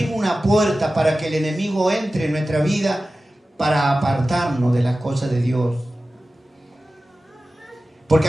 una puerta para que el enemigo entre en nuestra vida para apartarnos de las cosas de Dios. Porque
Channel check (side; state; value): both; normal; correlation 0.95